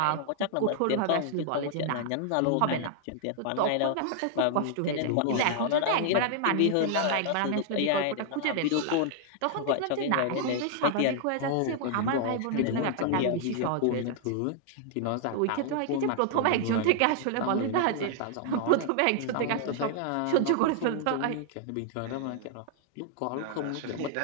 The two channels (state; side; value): different; both; correlation -0.01